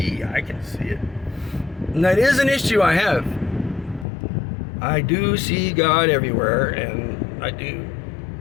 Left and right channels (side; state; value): right; drops out; at 4.0 s